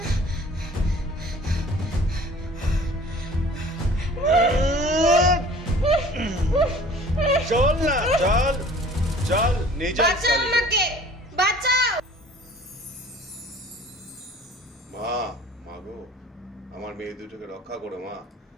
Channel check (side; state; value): both; normal; correlation 0.49